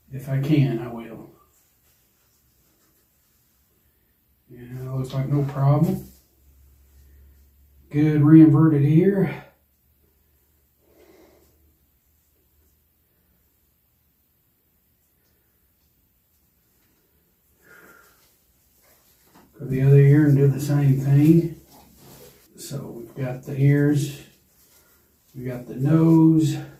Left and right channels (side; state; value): both; identical; correlation 1.00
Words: If I can, I will. Yeah, looks like no problem. Good re-inverted ear. Go the other ear and do the same thing. So we've got the ears, we got the nose,